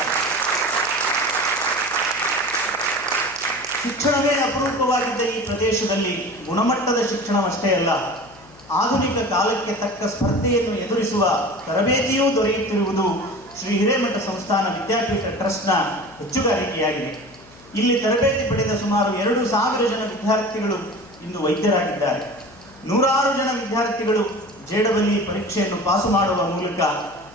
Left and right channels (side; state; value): left; noise; hum, 24 dB below the sound